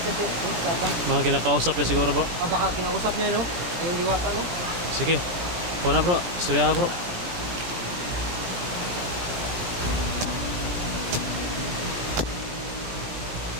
si Tatang. Mga kinakausap niya siguro bro. Baka kinausap niya no? Yung diwata no? Sige, kuha na bro, istorya bro.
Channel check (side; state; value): left; late; 17 ms